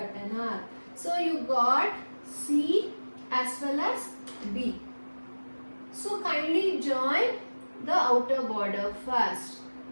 an arc. So you got C as well as B. So kindly join the outer border first.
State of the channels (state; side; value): inverted; both; correlation -1.00